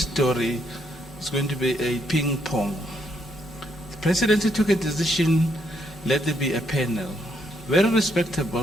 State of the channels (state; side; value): normal; both; correlation 0.74